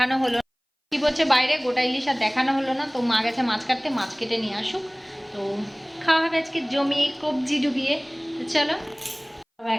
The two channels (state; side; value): identical; both; correlation 1.00